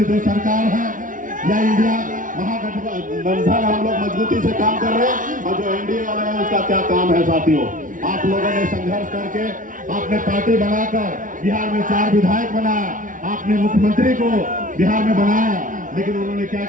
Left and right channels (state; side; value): late; left; 0.38 ms